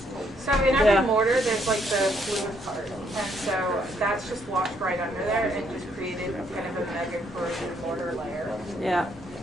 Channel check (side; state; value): both; normal; correlation 0.71